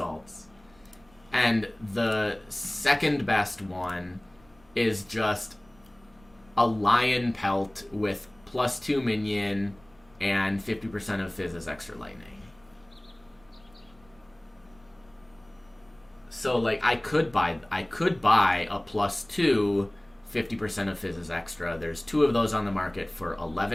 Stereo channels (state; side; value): noise; right; rumble, 29 dB below the sound